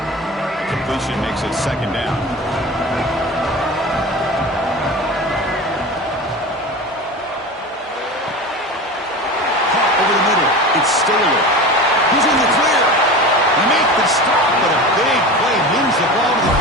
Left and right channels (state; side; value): normal; both; correlation 0.30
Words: Completion makes it second down. Caught over the middle. It's Staley. He's in the clear. They make the stop, but a big play moves the ball to the